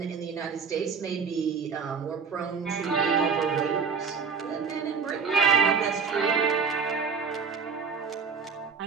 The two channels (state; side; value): quieter; left; 5.7 dB